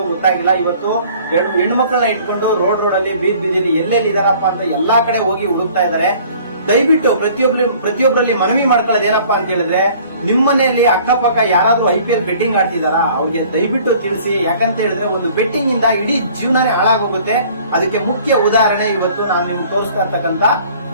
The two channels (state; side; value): inverted; both; correlation -0.53